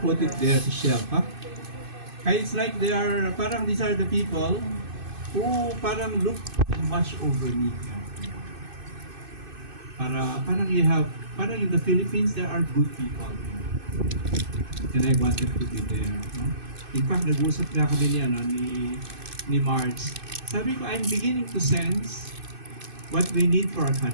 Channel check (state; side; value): late; left; 2.5 ms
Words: it there to shelf, ha? Kaya it's like they are, parang these are the people who parang look and watch over me. Parang you have, parang in the Philippines, there are good people. And I wanted to be there. No? In fact, nag-usap na kami ni Marge. Sabi ko, I'm beginning to sense what we need for our